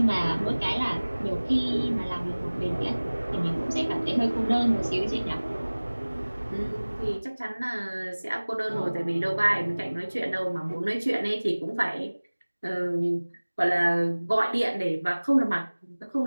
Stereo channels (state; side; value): inverted; both; correlation -1.00